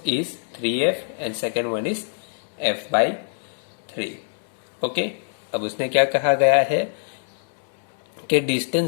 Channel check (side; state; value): right; silent; digital silence